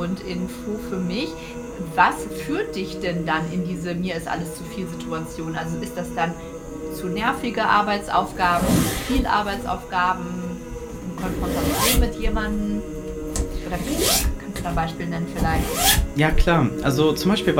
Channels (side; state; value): both; identical; correlation 1.00